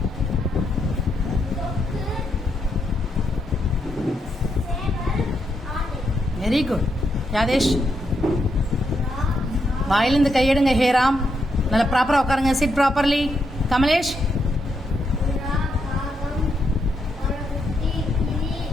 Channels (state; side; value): normal; both; correlation 0.80